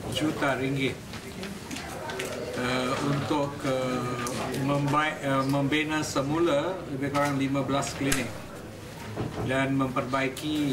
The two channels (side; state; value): both; identical; correlation 1.00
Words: juta ringgit untuk membina semula lebih kurang 15 klinik dan